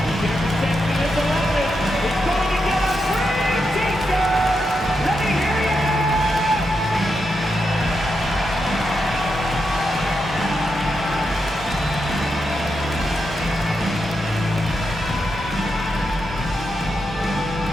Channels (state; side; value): normal; both; correlation 0.85